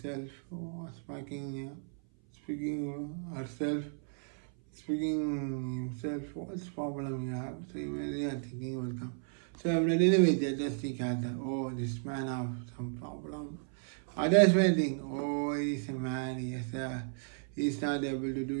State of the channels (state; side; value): silent; left; 55 dB below the other